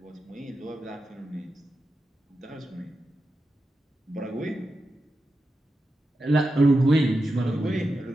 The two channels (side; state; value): both; normal; correlation 0.90